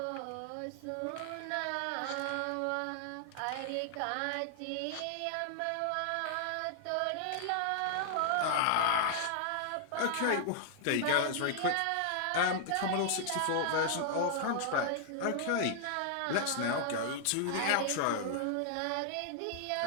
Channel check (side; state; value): both; different; correlation -0.01